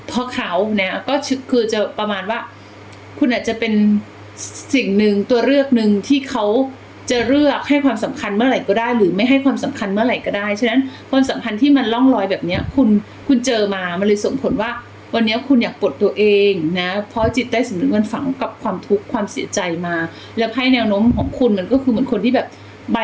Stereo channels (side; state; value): both; identical; correlation 1.00